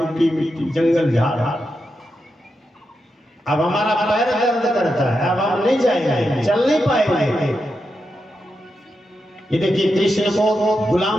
मिट्टी जंगल झाड़, अब हमारा पैर दर्द करता है, अब हम नहीं जाएंगे, चल नहीं पाएंगे। ये देखिए कृष्ण को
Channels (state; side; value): normal; both; correlation 0.87